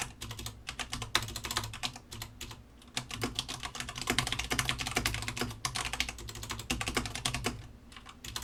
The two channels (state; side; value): identical; both; correlation 1.00